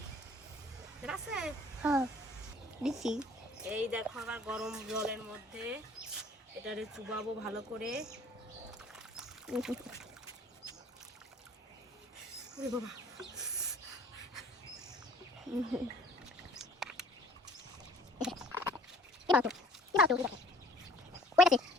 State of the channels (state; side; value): normal; both; correlation 0.53